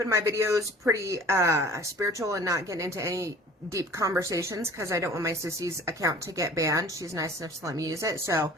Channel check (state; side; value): normal; both; correlation 0.46